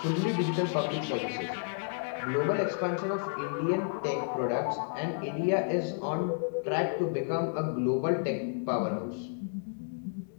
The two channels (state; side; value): silent; right; digital silence